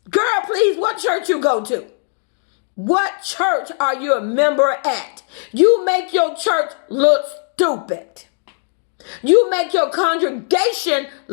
Girl, please, what church you go to? What church are you a member at? You make your church look stupid. You make your congregation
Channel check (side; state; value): right; silent; 61 dB below the other